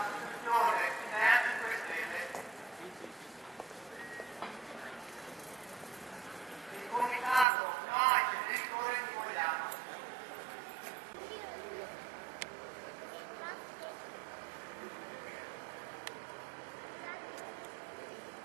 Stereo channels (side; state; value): left; drops out; at 7.5 s